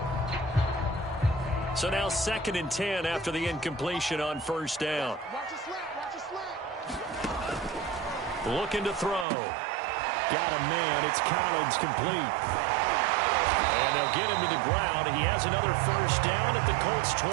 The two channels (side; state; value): left; drops out; at 9.2 s